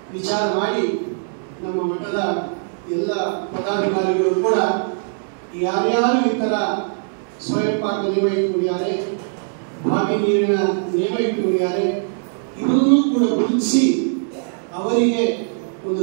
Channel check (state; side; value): silent; left; 65 dB below the other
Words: ವಿಚಾರ ಮಾಡಿ ನಮ್ಮ ಮಠದ ಎಲ್ಲ ಪದಾಧಿಕಾರಿಗಳು ಕೂಡ ಯಾರ್ಯಾರು ಈ ಥರ ಸ್ವಯಂ ಪಾಕ ನಿಯಮ ಇಟ್ಕೊಂಡಿದ್ದಾರೆ, ಬಾವಿ ನೀರಿನ ನಿಯಮ ಇಟ್ಕೊಂಡಿದ್ದಾರೆ, ಇವರನ್ನೂ ಕೂಡ ಗುರುತಿಸಿ ಅವರಿಗೆ ಒಂದು